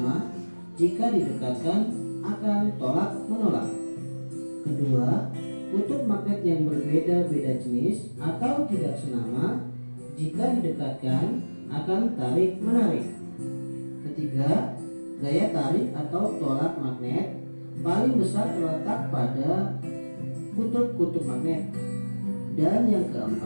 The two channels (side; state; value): both; inverted; correlation -1.00